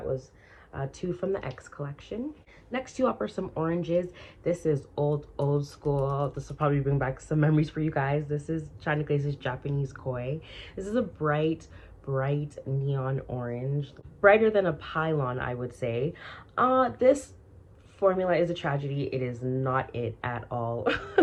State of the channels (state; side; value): identical; both; correlation 1.00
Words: was 2 from the X collection. Next 2 up are some oranges. This is old school. This will probably bring back some memories for you guys. This is China Glaze's Japanese Koi. This is a bright bright neon orange, brighter than a pylon, I would say. This formula is a tragedy. It is not it at all.